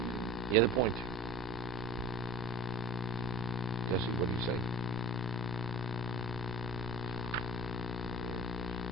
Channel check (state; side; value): normal; both; correlation 0.38